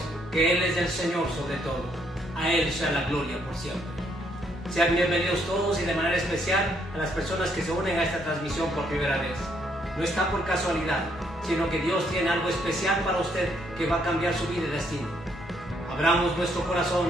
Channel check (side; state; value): both; normal; correlation 0.71